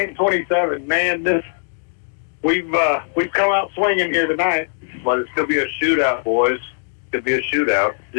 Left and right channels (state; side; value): silent; right; digital silence